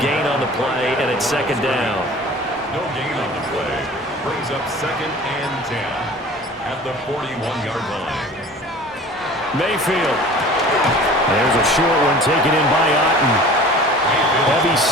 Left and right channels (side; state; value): both; normal; correlation 0.43